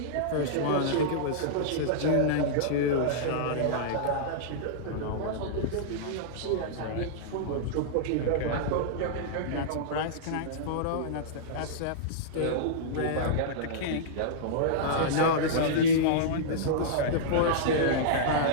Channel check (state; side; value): different; both; correlation -0.03